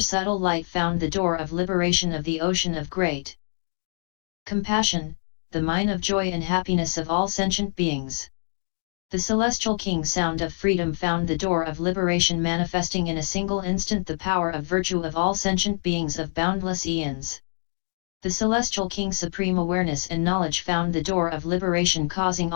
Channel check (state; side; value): silent; right; 62 dB below the other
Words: light found the door of liberation of the ocean of great compassion, the mine of joy and happiness of all sentient beings. The celestial king sound of freedom found the door of liberation, manifesting in a single instant the power of virtue of all sentient beings of boundless eons. The celestial king supreme awareness and knowledge found the door of liberation, causing